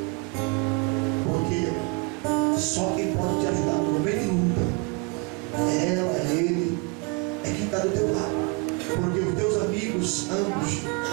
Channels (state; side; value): quieter; left; 30.0 dB